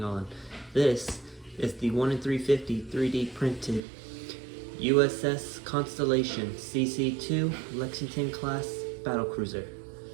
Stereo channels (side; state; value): left; drops out; at 3.8 s